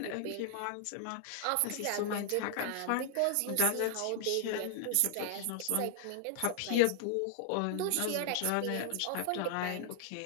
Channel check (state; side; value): different; both; correlation 0.00